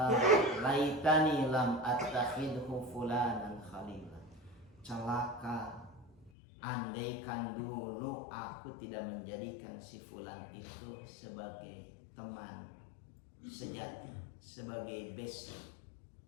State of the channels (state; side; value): drops out; right; at 6.3 s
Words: laitani lam attakhidhu fulanan khalila. Celaka, andaikan dulu aku tidak menjadikan si fulan itu sebagai teman sejati, sebagai besti.